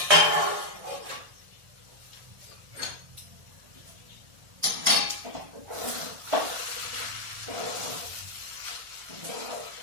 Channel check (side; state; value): left; late; 1.5 ms